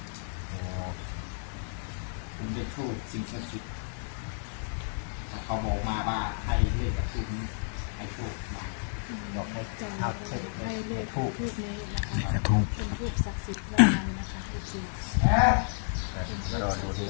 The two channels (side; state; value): right; silent; digital silence